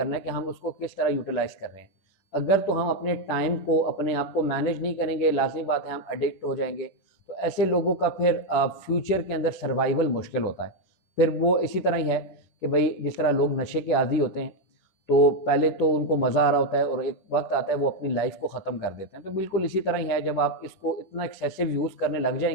ہے کہ ہم اس کو کس طرح یوٹیلائز کر رہے ہیں. اگر تو ہم اپنے ٹائم کو، اپنے آپ کو مینیج نہیں کریں گے، لازمی بات ہے ہم ایڈکٹ ہو جائیں گے. تو ایسے لوگوں کا پھر فیوچر کے اندر سروائیول مشکل ہوتا ہے. پھر وہ اسی طرح ہی ہے کہ بھئی جس طرح لوگ نشے کے عادی ہوتے ہیں تو پہلے تو ان کو مزہ آ رہا ہوتا ہے اور ایک وقت آتا ہے وہ اپنی لائف کو ختم کر دیتے ہیں. تو بالکل اسی طرح ہی ہے، جب آپ اس کو اتنا ایکسیسو یوز کرنے لگ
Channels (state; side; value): late; right; 10 ms